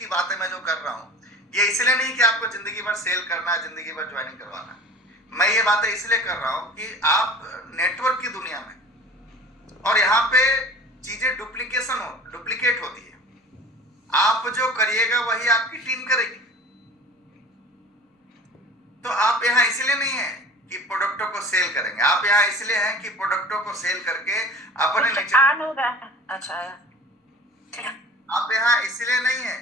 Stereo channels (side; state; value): both; normal; correlation 0.41